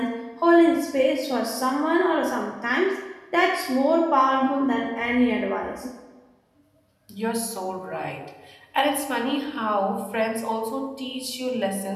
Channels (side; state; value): both; identical; correlation 1.00